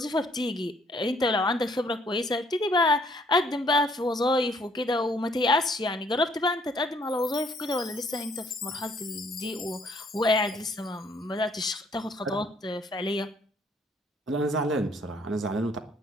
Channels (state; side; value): normal; both; correlation 0.64